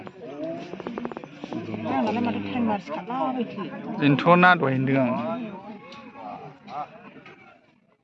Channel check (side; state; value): both; identical; correlation 1.00